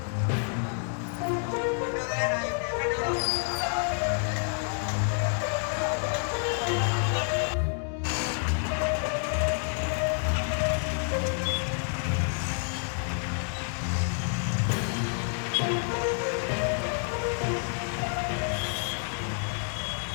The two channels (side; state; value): right; silent; 57 dB below the other